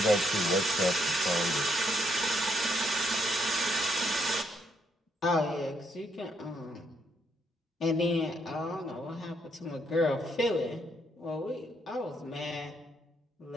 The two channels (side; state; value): both; normal; correlation 0.74